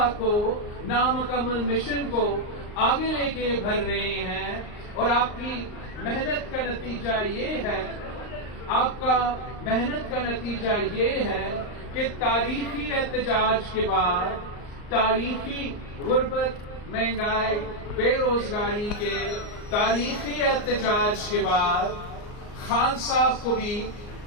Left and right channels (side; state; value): right; late; 39 ms